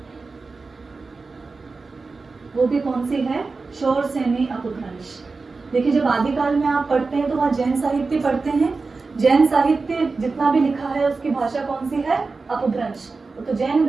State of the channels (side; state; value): left; quieter; 4.1 dB